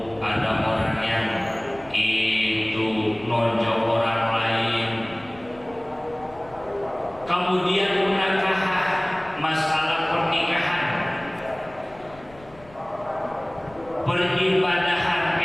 ada orang yang itu nonjok orang lain. Kemudian munakahah, masalah pernikahan, peribadahan,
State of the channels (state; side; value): noise; left; rumble, 23 dB below the sound